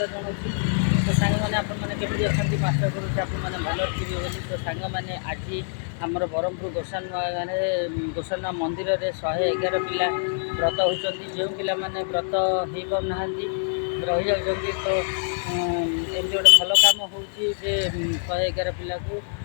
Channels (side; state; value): right; silent; digital silence